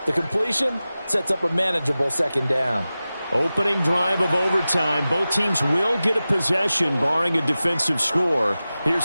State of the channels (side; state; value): both; inverted; correlation -0.96